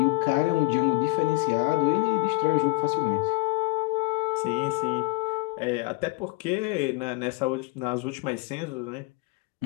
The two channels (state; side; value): quieter; right; 22.6 dB